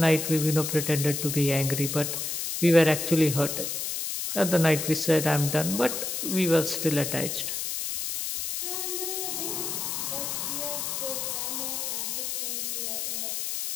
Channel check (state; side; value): noise; left; hiss, 3 dB below the sound